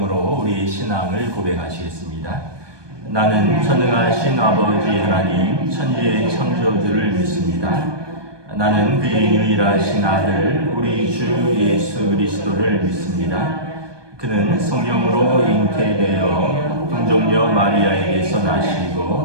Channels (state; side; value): late; left; 1.2 ms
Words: 우리의 신앙을 고백하시겠습니다. 나는 전능하신 아버지 하나님 천지의 창조주를 믿습니다. 나는 그의 유일하신 아들 우리 주 예수 그리스도를 믿습니다. 그는 성령으로 잉태되어 동정녀 마리아에게서